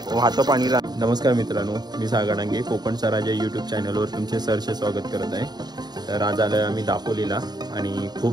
वाहतं पाणी नमस्कार मित्रांनो मी सागर डांगे कोकणचा राजा यूट्यूब चॅनलवर तुमचे सहर्ष स्वागत करत आहे तर आज आलोय आम्ही दापोलीला आणि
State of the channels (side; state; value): left; late; 0.20 ms